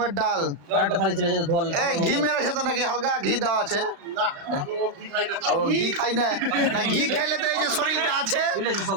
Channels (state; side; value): late; left; 36 ms